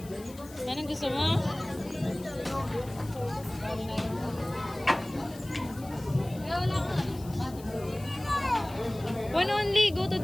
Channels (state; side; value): noise; left; hiss, 20 dB below the sound